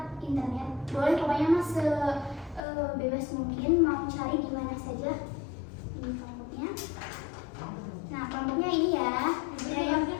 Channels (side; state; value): right; drops out; at 2.6 s